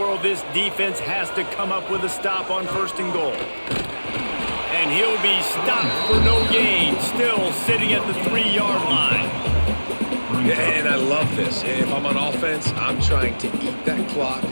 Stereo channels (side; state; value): both; inverted; correlation -1.00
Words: this defense has to come up with a stop on first and goal. And he'll be stopped for no gain, still sitting at the 3-yard line. And I love this. If I'm on offense, I'm trying to eat that clock,